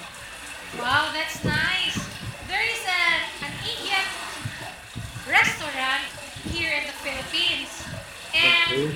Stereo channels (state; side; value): identical; both; correlation 1.00